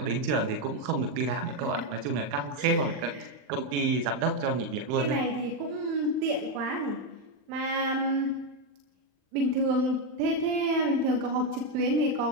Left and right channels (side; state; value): left; late; 39 ms